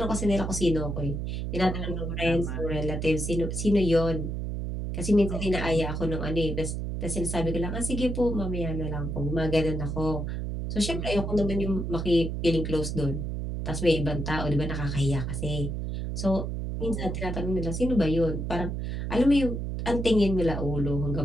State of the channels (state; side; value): noise; right; hum, 3 dB below the sound